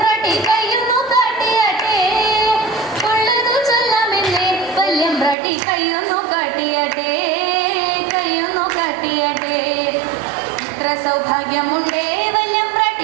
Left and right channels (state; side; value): drops out; left; at 5.4 s